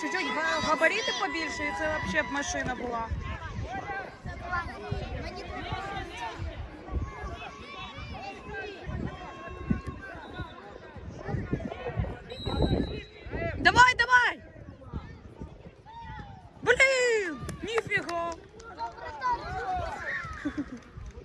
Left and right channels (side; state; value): both; identical; correlation 1.00